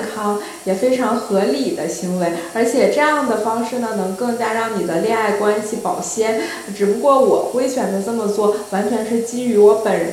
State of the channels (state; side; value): identical; both; correlation 1.00